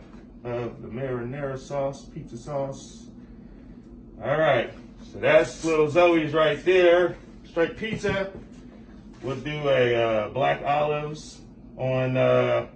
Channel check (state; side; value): identical; both; correlation 1.00